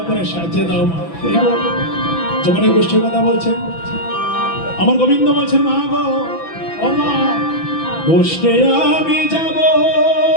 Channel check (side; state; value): right; late; 6.0 ms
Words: করে সাহায্য দাও মা। যখন এই গোষ্ঠীর কথা বলছেন, আমার গোবিন্দ বলছেন, মা গো, ও মা, গোষ্ঠে আমি যাব,